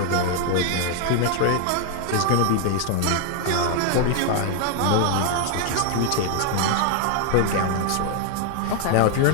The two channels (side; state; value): both; different; correlation 0.00